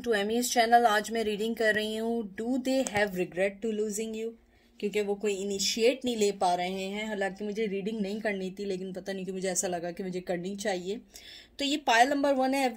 to Amy's channel. आज मैं reading कर रही हूँ do they have regret to losing you, क्योंकि वो कोई इनिशिएट नहीं ले पा रहे हैं। हालांकि मुझे रीडिंग नहीं करनी थी, लेकिन पता नहीं कि मुझे ऐसा लगा कि मुझे करनी चाहिए। तो ये पायल नंबर 1 है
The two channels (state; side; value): identical; both; correlation 1.00